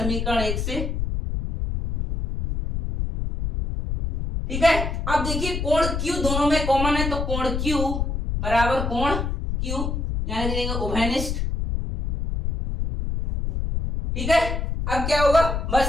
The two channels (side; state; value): left; noise; rumble, 2 dB below the sound